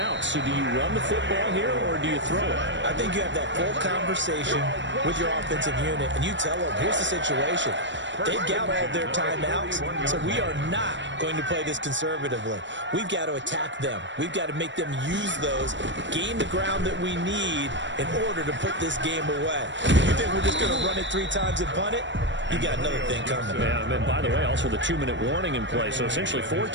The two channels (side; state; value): left; late; 0.53 ms